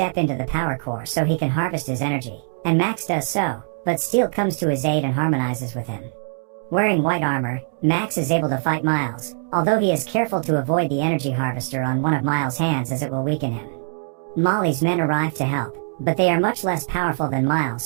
into the power core so he can harvest his energy, and Max does so, but Steel comes to his aid and harmonizes with him. Wearing white armor, Max is able to fight Miles, although he is careful to avoid the energy harvester on one of Miles' hands as it will weaken him. Molly's men arrive to help, but they are much less powerful than Miles,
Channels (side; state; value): left; silent; 64 dB below the other